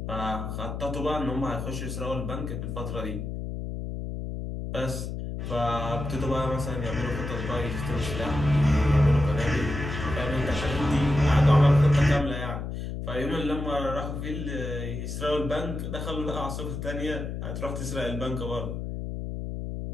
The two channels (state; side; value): noise; left; hum, 5 dB below the sound